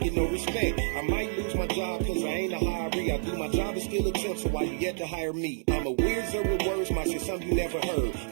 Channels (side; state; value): left; silent; digital silence